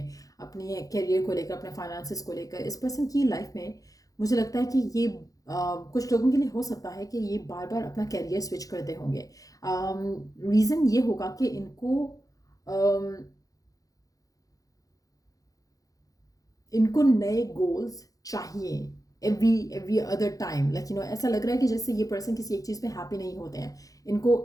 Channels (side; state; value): right; late; 0.17 ms